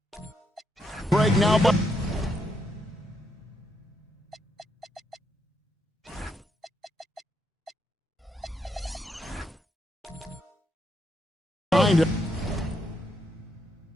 Break now. Behind it.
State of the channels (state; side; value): normal; both; correlation 0.78